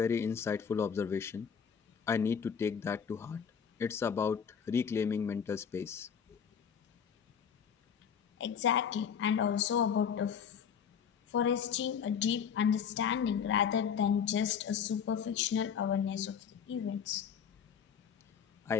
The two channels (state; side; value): quieter; right; 7.4 dB